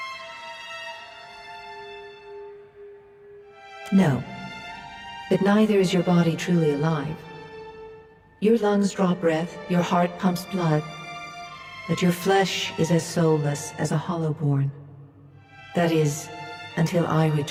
No, but neither is your body truly alive. Your lungs draw breath, your heart pumps blood, but your flesh is as soulless as a hollowborn. That is, until I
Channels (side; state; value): both; identical; correlation 1.00